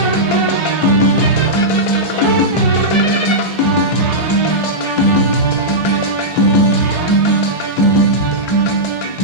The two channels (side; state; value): right; late; 1.4 ms